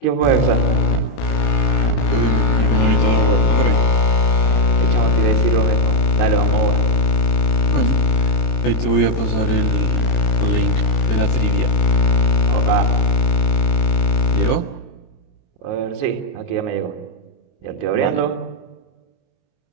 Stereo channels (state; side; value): late; right; 22 ms